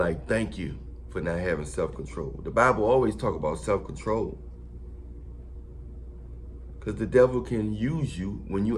thank you for not having self-control. The Bible always talk about self-control. Because the devil can use you when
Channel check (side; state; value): both; identical; correlation 1.00